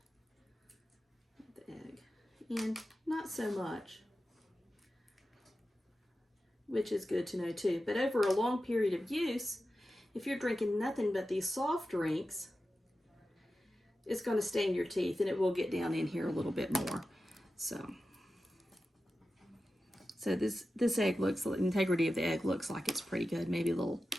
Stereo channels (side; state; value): both; normal; correlation 0.92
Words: of the egg. And not so much, which is good to know too. But over a long period of use, if you're drinking nothing but these soft drinks, it's going to stain your teeth, and it will get down in here a little bit more. So this egg looks, the integrity of the egg looks like it's pretty good. Maybe a little